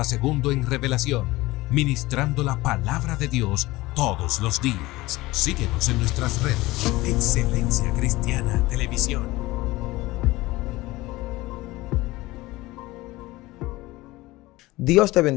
segundo en revelación, ministrando la palabra de Dios todos los días. Síguenos en nuestras redes. Excelencia Cristiana Televisión. Dios te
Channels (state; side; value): quieter; right; 19.6 dB